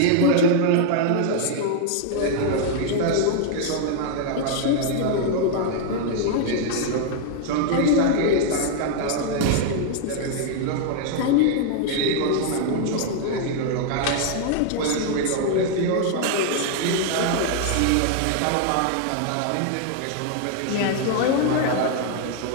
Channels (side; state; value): both; different; correlation 0.00